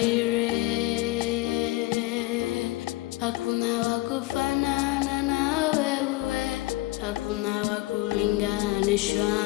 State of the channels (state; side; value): quieter; right; 18.9 dB